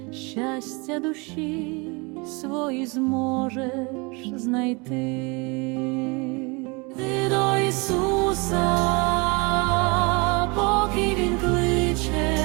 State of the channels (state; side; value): quieter; left; 28.9 dB